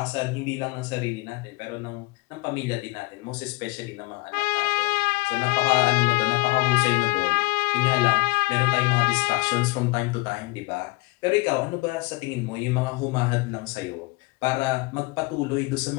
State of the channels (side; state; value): right; quieter; 25.0 dB